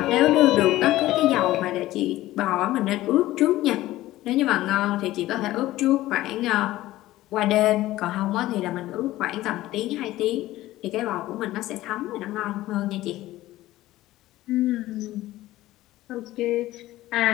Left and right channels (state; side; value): quieter; right; 16.0 dB